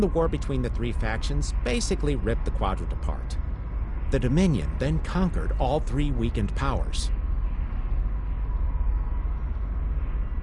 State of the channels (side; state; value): both; identical; correlation 1.00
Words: the war between the three factions basically ripped the quadrant apart. The Dominion then conquered all three weakened powers.